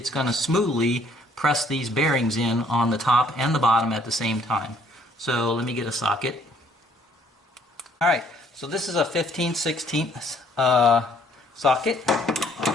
going to smoothly press these bearings in on the top and the bottom at the same time. So let me get a socket. Alright, so this is a 15/16 socket,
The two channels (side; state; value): both; normal; correlation 0.63